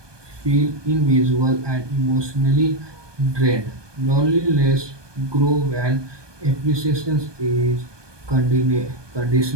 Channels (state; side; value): late; left; 1.2 ms